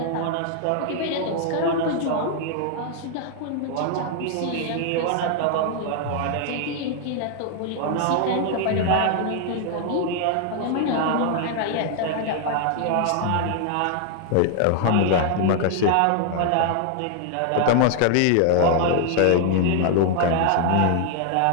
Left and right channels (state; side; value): different; both; correlation 0.00